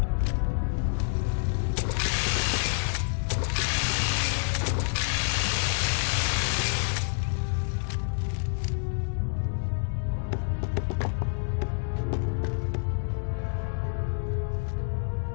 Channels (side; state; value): right; silent; digital silence